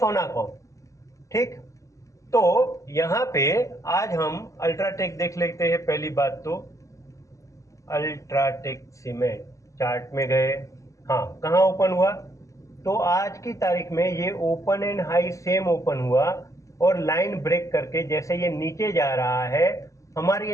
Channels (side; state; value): right; late; 0.16 ms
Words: ठीक, तो यहाँ पे आज हम अल्ट्राटेक देख लेते हैं। पहली बात तो अल्ट्राटेक सीमेंट चार्ट में गए, हाँ कहाँ ओपन हुआ, तो आज की तारीख में ये open and high same open हुआ और लाइन ब्रेक करके जैसे ये नीचे जा रहा है हमारी